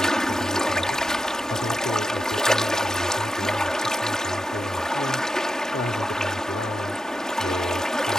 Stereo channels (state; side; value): normal; both; correlation 0.88